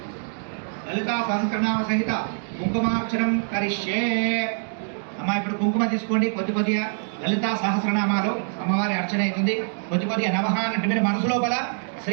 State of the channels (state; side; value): silent; left; digital silence